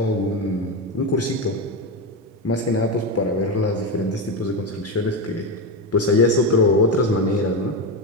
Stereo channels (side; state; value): both; normal; correlation 0.14